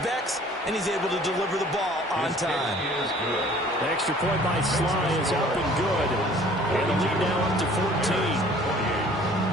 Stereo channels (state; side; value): normal; both; correlation 0.52